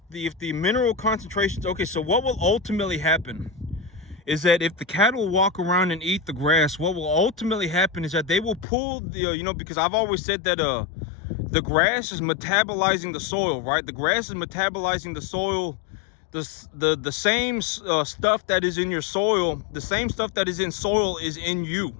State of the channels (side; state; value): right; drops out; at 8.7 s